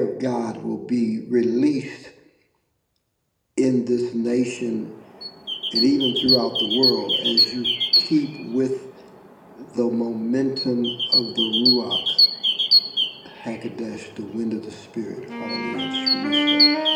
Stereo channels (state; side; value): identical; both; correlation 1.00